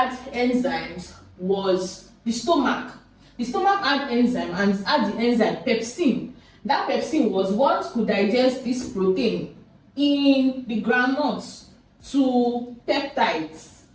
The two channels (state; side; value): identical; both; correlation 1.00